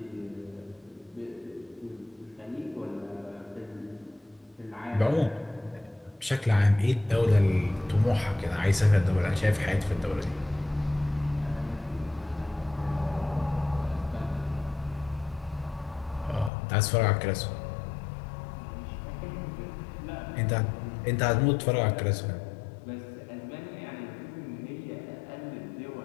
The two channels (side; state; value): right; drops out; at 16.5 s